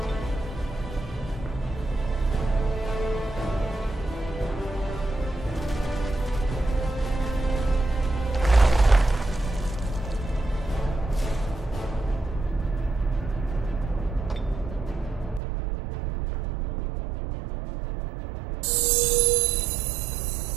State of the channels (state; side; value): drops out; left; at 15.4 s